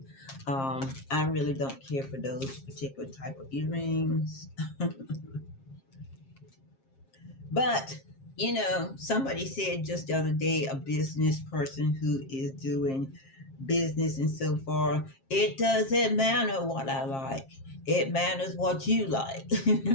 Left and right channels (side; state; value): right; late; 7.4 ms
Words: I really don't care for those particular type of earrings. But somebody said just the other day, a business person who is doing business and so far, it doesn't matter what I like, it matters what you like.